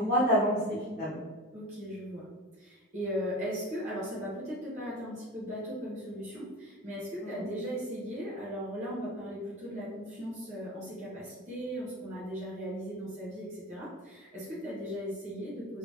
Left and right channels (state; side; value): normal; both; correlation 0.32